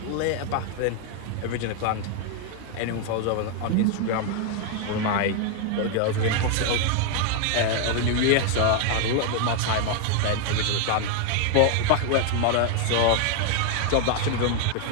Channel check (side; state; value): both; different; correlation 0.01